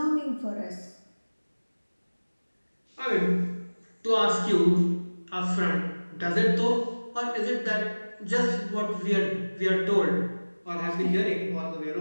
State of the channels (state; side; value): inverted; both; correlation -1.00